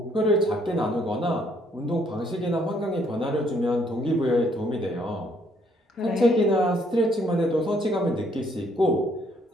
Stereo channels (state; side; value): normal; both; correlation 0.67